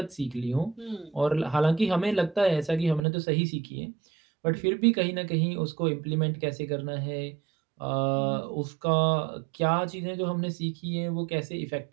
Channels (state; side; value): drops out; left; at 3.0 s